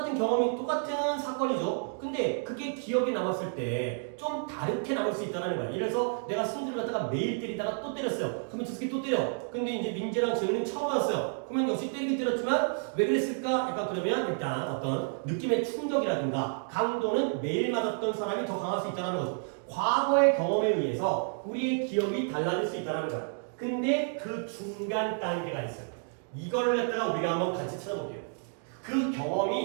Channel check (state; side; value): silent; left; 58 dB below the other